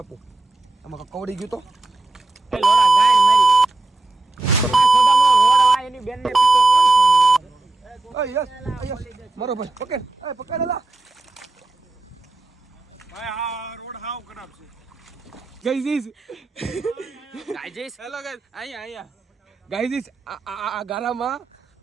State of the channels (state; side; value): quieter; left; 3.1 dB